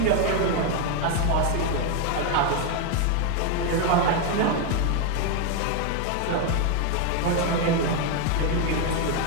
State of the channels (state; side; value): different; both; correlation 0.01